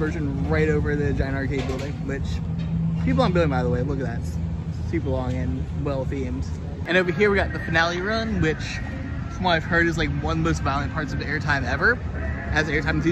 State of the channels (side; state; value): both; identical; correlation 1.00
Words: right over the giant arcade building, which people aren't building, by the way. Look at that. It's super long and well themed. And over here we got the finale run, which from what I've heard is like one of the most violent parts of the airtime ever. As an airtime